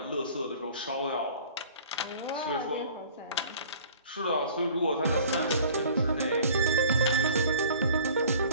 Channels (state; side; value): inverted; both; correlation -0.49